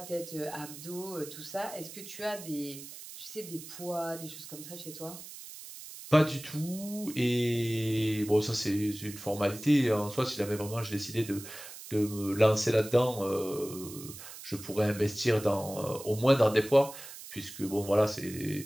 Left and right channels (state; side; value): noise; right; hiss, 13 dB below the sound